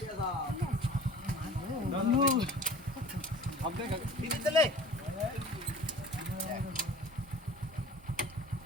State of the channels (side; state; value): both; normal; correlation 0.43